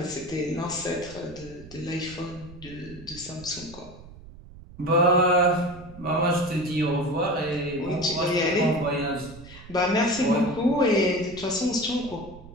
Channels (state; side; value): noise; right; rumble, 18 dB below the sound